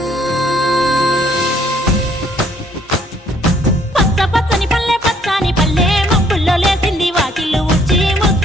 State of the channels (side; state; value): both; normal; correlation 0.64